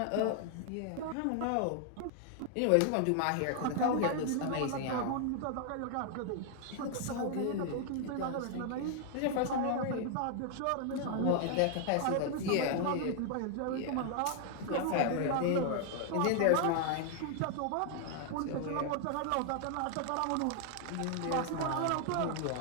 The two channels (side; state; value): both; different; correlation 0.00